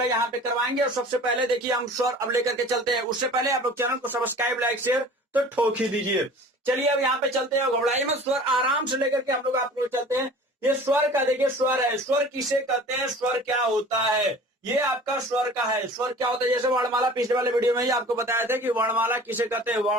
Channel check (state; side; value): normal; both; correlation 0.44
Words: यहाँ पे करवाएंगे। और सबसे पहले देखिए हम स्वर अब लेकर के चलते हैं। उससे पहले आप लोग चैनल को सब्सक्राइब, लाइक, शेयर तो ठोक ही दीजिए। चलिए अब यहाँ पे चलते हैं, घबराइए मत, स्वर आराम से लेकर के हम लोग आप लोग चलते हैं। ये स्वर का देखिए, स्वर है, स्वर किसे कहते हैं, स्वर क्या होता है, ये आपका स्वर का है। स्वर क्या होता है, जैसे वर्णमाला पिछले वाले वीडियो में ही आपको बताया था कि वर्णमाला किसे कहते हैं,